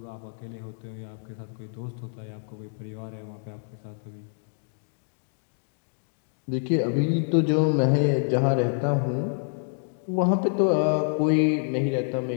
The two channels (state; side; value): silent; right; digital silence